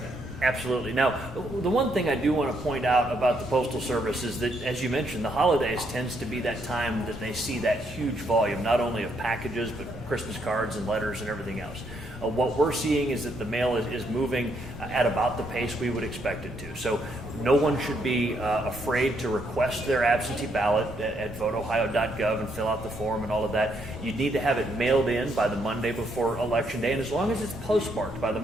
Absolutely. Now, the one thing I do want to point out about the Postal Service is that, as you mentioned, the holidays tends to be that time that they see that huge volume, not only of packages, but Christmas cards and letters and everything else. What we're seeing is that the mail is moving at about the pace we would expect it to. So no one should be afraid to request their absentee ballot at voteohio.gov and fill out the form and all of that. You need to have it mailed in by the Monday before Election Day, and as long as it's postmarked by the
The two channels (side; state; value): both; normal; correlation 0.74